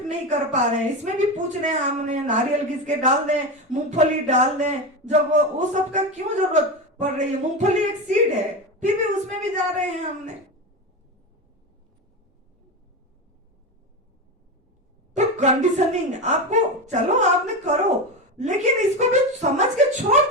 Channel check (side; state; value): both; normal; correlation 0.19